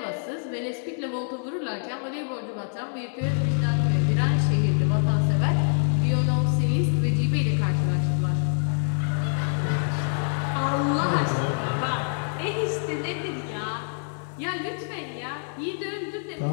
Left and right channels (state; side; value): silent; right; 61 dB below the other